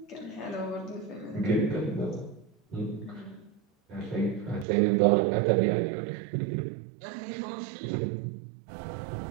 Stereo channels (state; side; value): drops out; left; at 4.7 s